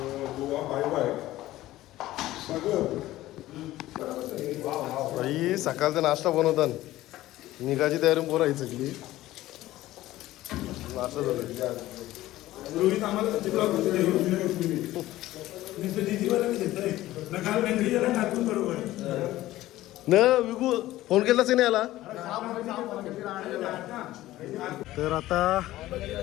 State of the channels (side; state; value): right; quieter; 15.8 dB